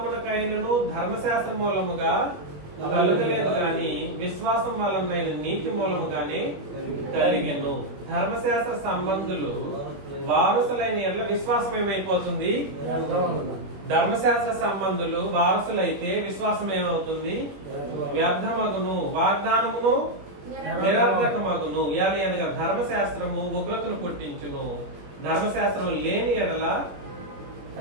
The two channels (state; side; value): late; left; 21 ms